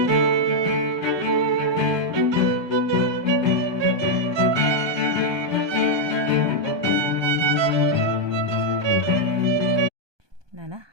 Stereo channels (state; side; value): late; left; 1.2 ms